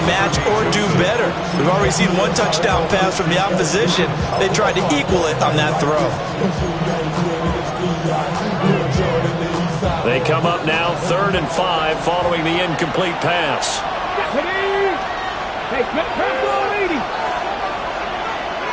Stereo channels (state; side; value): identical; both; correlation 1.00